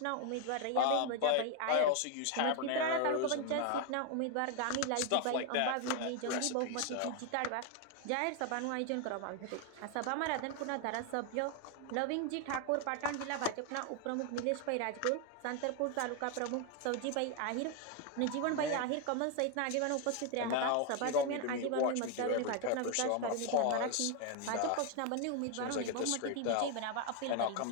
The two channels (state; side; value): different; both; correlation 0.01